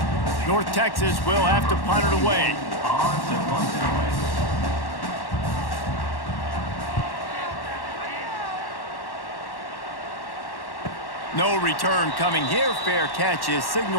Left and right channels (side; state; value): right; late; 1.1 ms